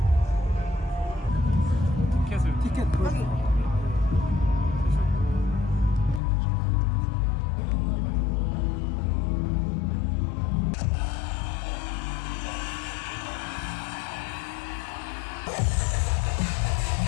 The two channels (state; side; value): drops out; right; at 6.2 s